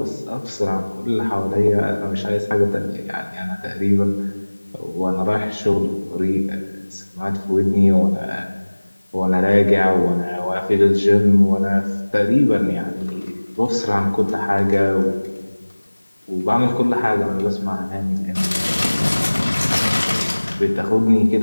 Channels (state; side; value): inverted; both; correlation -1.00